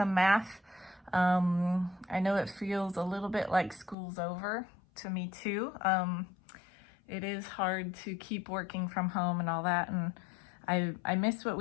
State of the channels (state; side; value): drops out; right; at 4.0 s